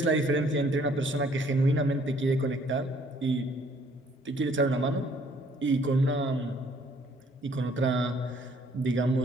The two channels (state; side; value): normal; both; correlation 0.62